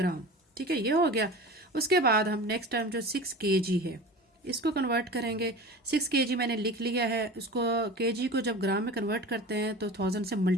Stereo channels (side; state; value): both; normal; correlation 0.34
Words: ठीक है, ये हो गया। उसके बाद हम नेक्स्ट टर्म जो 6 kg है इसको कन्वर्ट करेंगे। 6 kg मैंने लिख लिया है, उसको kg को जब ग्राम में कन्वर्ट करते हैं तो 1000 से